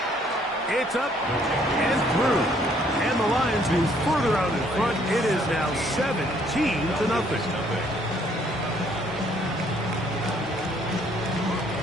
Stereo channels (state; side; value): normal; both; correlation 0.64